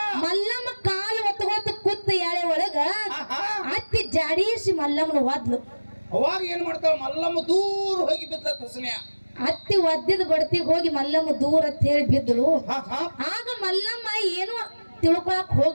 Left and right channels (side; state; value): both; inverted; correlation -1.00